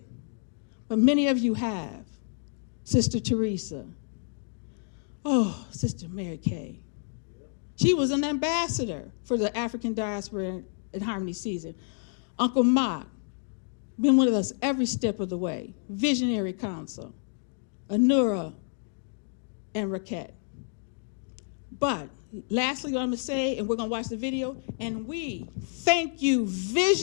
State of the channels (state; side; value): silent; right; 58 dB below the other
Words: but many of you have. Sister Teresa. Oh, Sister Mary Kay. She was an ambassador for the African diaspora in Harmony season. Uncle Mock, been with us every step of the way. Visionary Council, Anura, and Raquette. But lastly, what I'm gonna say, and we're gonna watch the video, and we thank you,